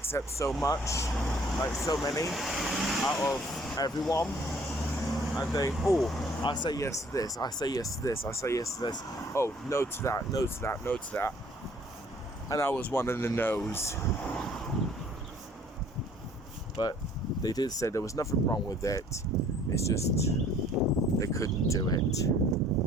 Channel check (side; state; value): both; normal; correlation 0.57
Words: so much, like so many out of everyone. And they, oh, I say yes to this, I say yes to this, I say yes to this. Oh, no to that, no to that, no to that. And I was one of the no's. But they did say there was nothing wrong with it. It's just they couldn't do it,